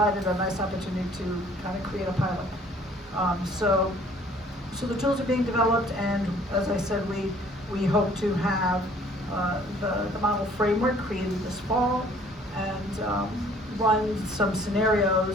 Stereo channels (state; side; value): normal; both; correlation 0.56